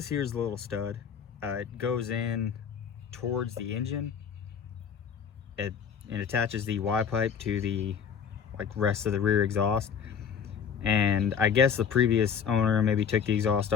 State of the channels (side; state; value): right; quieter; 7.3 dB